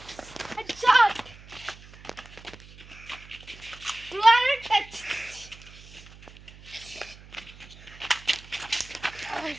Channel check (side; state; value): right; noise; hum, 20 dB below the sound